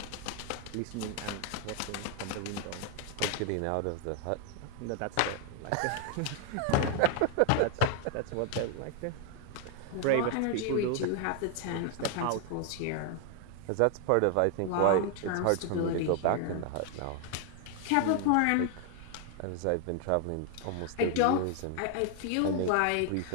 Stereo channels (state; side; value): different; both; correlation 0.00